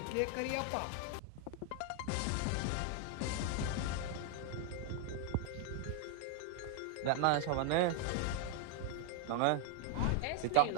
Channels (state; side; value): different; both; correlation 0.01